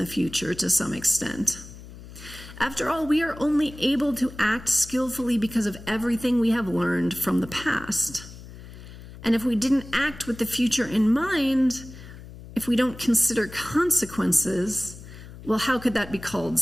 the future to some extent. After all, we are only able to act skillfully because of everything we have learned from the past. And if we didn't act with the future in mind, if we don't consider consequences, well, how could that be called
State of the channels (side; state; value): left; noise; hum, 16 dB below the sound